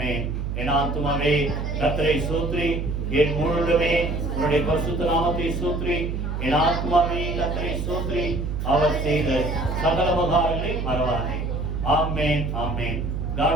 என் ஆத்துமாவே கர்த்தரை ஸ்தோத்திரி, என் முழுவதுமே உன்னுடைய பரிசுத்த நாமத்தை ஸ்தோத்திரி. என் ஆத்துமாவே கர்த்தரை ஸ்தோத்திரி, அவர் செய்த சகல உபகாரங்களை மறவாதே. ஆமென் ஆமென். God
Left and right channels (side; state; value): right; noise; hum, 3 dB below the sound